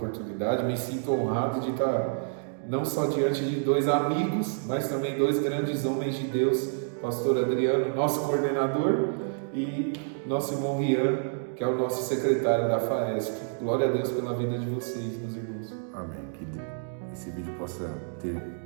Me sinto honrado de estar não só diante de dois amigos, mas também dois grandes homens de Deus. Pastor Adriano, nosso coordenador, e nosso irmão Rian, que é o nosso secretário da FAESP. Glória a Deus pela vida de vocês, meus irmãos. Amém. Que esse vídeo possa ter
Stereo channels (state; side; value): silent; left; digital silence